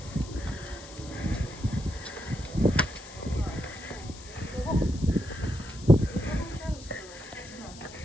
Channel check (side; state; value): left; noise; hiss, 17 dB below the sound